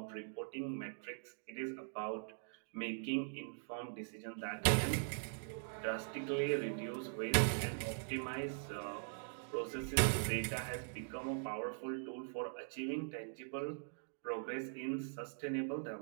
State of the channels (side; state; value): left; silent; digital silence